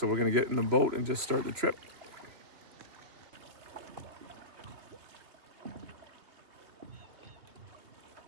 we're going to get in the boat and just start the trip.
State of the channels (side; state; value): left; late; 3.2 ms